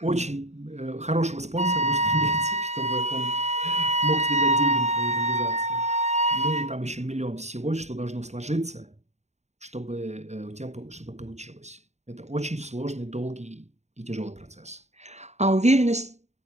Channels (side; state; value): left; late; 0.33 ms